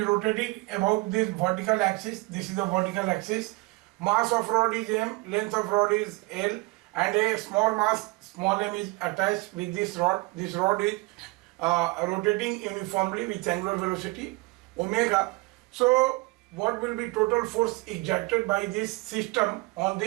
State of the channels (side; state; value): left; quieter; 24.3 dB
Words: rotating about this vertical axis. This is the vertical axis. Mass of rod is m, length of rod is l, and a small mass small m is attached with this rod. This rod is rotating uniformly with angular velocity omega. So what will be total force exerted by this system on